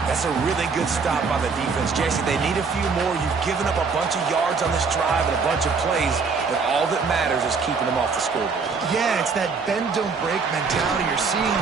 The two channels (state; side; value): quieter; left; 5.0 dB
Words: That's a really good stop by the defense. Jesse, they need a few more. You've given up a bunch of yards on this drive and a bunch of plays, but all that matters is keeping them off the scoreboard. Yeah, it's that bend, don't break mentality you're seeing